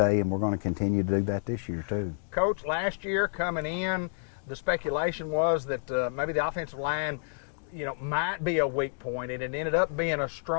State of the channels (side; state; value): right; silent; digital silence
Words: and we're going to continue to do that this year too. Coach, last year coming in, the speculation was that maybe the offensive line might be a weak point, and it ended up being a